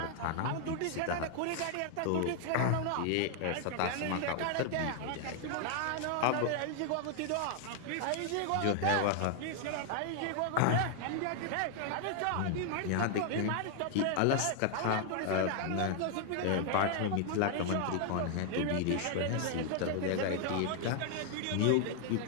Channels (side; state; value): both; different; correlation 0.00